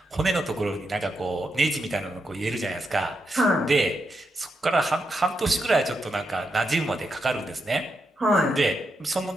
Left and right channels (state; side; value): normal; both; correlation 0.84